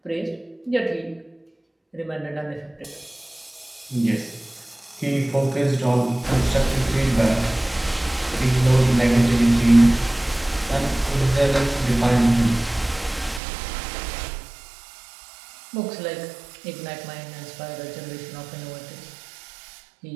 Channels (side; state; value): left; drops out; at 13.4 s